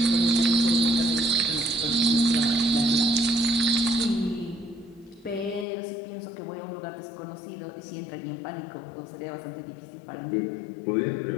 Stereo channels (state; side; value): drops out; right; at 5.7 s